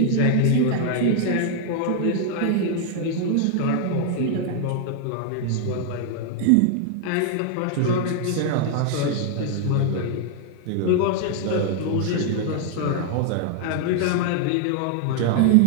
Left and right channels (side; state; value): both; different; correlation 0.00